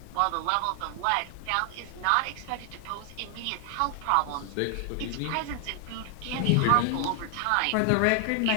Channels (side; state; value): both; different; correlation 0.00